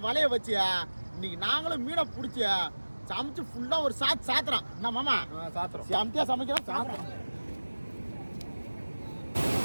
வலைய வச்சு இன்னைக்கு நாங்களும் மீனை பிடிச்சி சமைச்சு ஃபுல்லா ஒரு சாத்துறோம். என்ன மாமா சாத்துறோம், செமத்தியா சமைக்கிறோம் சாத்துறோம்.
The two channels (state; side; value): inverted; both; correlation -1.00